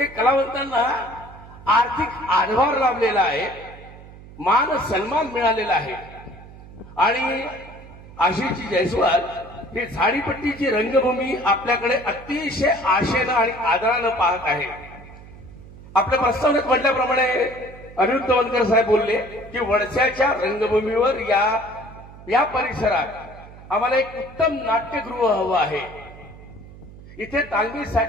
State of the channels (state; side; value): noise; right; hum, 18 dB below the sound